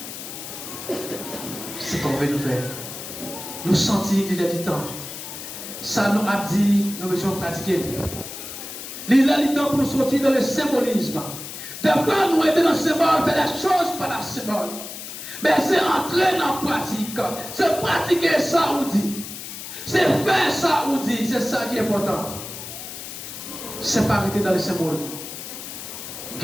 C'est ce qu'on veut nous faire. Nous sentir qu'il y a du temps. Ça nous a dit, nous devons pratiquer. Il y a du temps pour nous sortir dans le symbolisme. Des fois, nous étions dans le symbole, faire des choses par la symbole. Mais c'est entrer dans la pratique. C'est pratiquer ça ou dit. C'est faire ça ou dit. C'est ça qui est important. C'est pas arrêter dans le symbole.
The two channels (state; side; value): noise; left; hiss, 10 dB below the sound